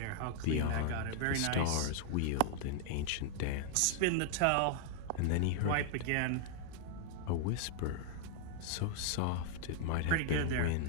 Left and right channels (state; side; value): different; both; correlation -0.01